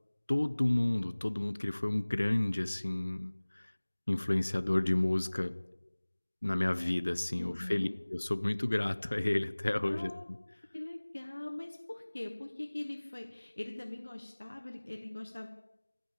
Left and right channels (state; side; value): inverted; both; correlation -1.00